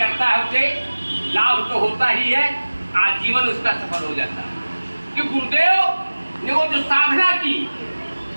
है उसे लाभ तो होता ही है, आजीवन उसका सफल हो जाता है। कि गुरुदेव ने वो जो साधना की,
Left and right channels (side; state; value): both; inverted; correlation -1.00